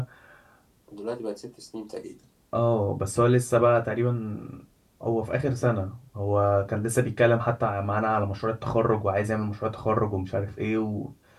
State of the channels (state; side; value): identical; both; correlation 1.00